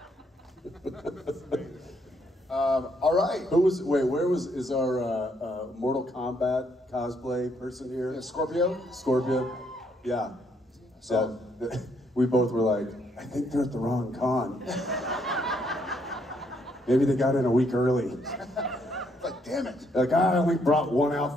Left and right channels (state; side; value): normal; both; correlation 0.72